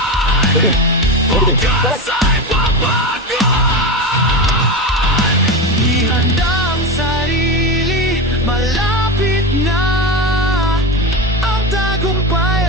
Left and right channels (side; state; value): both; normal; correlation 0.20